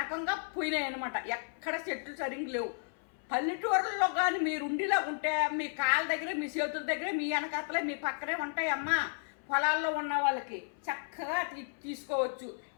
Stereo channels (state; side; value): silent; right; 56 dB below the other